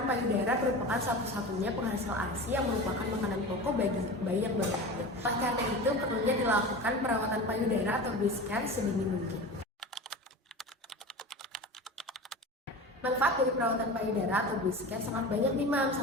payudara merupakan satu-satunya penghasil ASI yang merupakan makanan pokok bagi bayi yang baru lahir. Oleh karena itu, perlunya dilakukan perawatan payudara atau breast care sedini mungkin. Manfaat dari perawatan payudara atau breast care sangat banyak nih, Mam.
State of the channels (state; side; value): normal; both; correlation 0.31